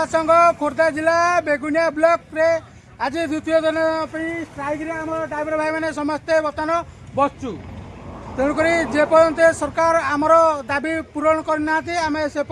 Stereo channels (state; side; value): identical; both; correlation 1.00